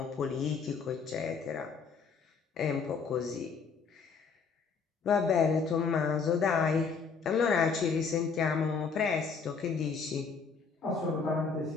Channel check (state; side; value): quieter; right; 5.4 dB